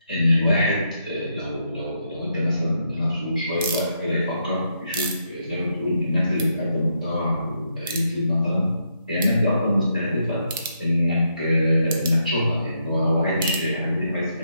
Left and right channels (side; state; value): both; inverted; correlation -0.79